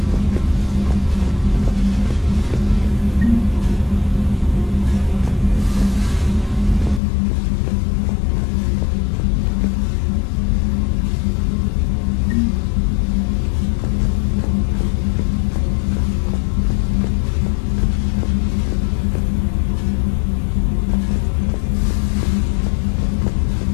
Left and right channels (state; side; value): drops out; right; at 7.0 s